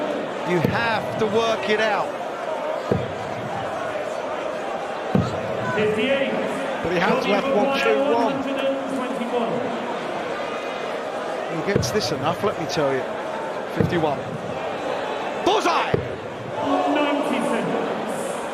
You have to work it out. 58. But he has left 1-2-1. He gets this enough, let me tell you. 51. Bullseye! 90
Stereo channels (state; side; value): identical; both; correlation 1.00